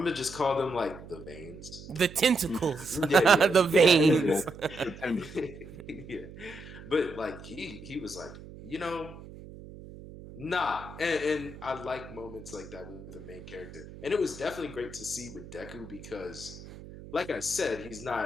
gonna just call them like the veins. The tentacles. The veins. Yeah. But like he was like, nah. And I like moments like that with the main character. And it was definitely great to see with Deku because, like I said, he's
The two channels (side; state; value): right; noise; hum, 15 dB below the sound